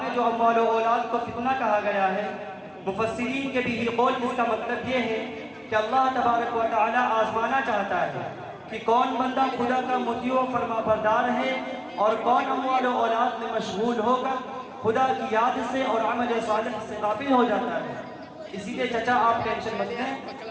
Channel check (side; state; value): both; identical; correlation 1.00